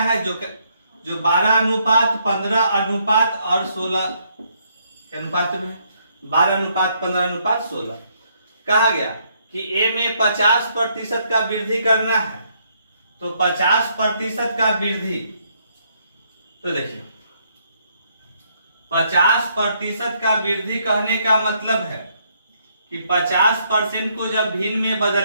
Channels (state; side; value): inverted; both; correlation -0.72